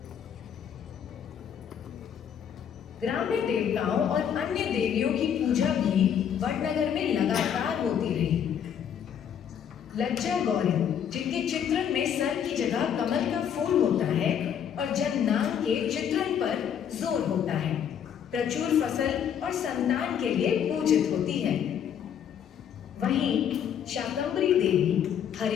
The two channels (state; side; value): quieter; right; 8.6 dB